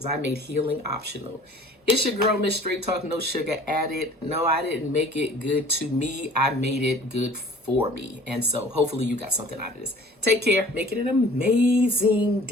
I made healing optional. It's your girl, Miss Straight Talk, no sugar added. No, I didn't make it good to me. I made it good for me. And so hopefully you got something out of this. Take care. Make it an amazing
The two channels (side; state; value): both; normal; correlation 0.48